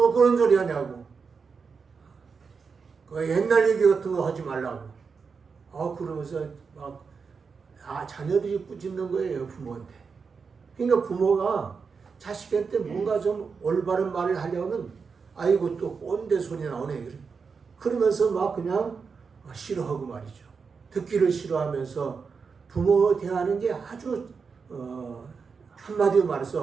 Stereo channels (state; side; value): quieter; left; 5.3 dB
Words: 그런 소리 하냐고, 그 옛날 얘기 같은 거 하지 말라고. 그러면서 막 자녀들이 꾸짖는 거예요, 부모한테. 그러니까 부모가 자식한테 뭔가 좀 올바른 말을 하려면 아이고 또 꼰대 소리 나오네. 그러면서 막 그냥 싫어하고 말이죠. 듣기를 싫어하면서 부모 대하는 게 아주 한마디로